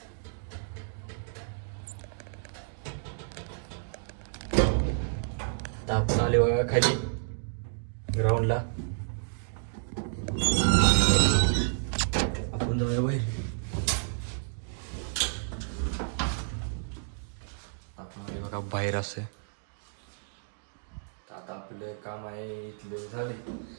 आता आपण आले बघा खाली ग्राउंडला. आपण जाऊया बाहेर. आपण आले बघा बाहेर असे. आता आपलं काम आहे इथले झाले.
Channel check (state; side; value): silent; left; digital silence